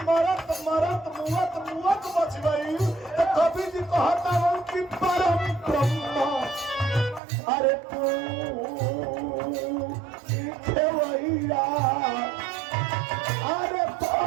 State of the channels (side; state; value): left; drops out; at 7.2 s